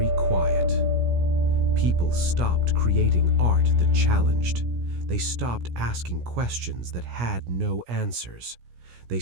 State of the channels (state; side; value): late; left; 17 ms